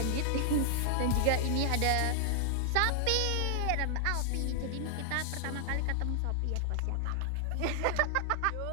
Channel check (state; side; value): different; both; correlation 0.00